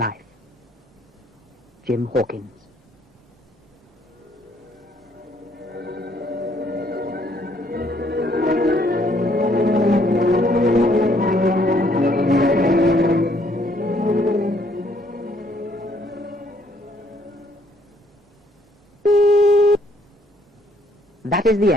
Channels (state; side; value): normal; both; correlation 0.66